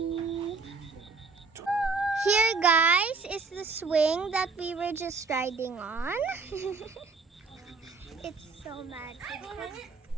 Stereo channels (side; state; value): left; quieter; 4.4 dB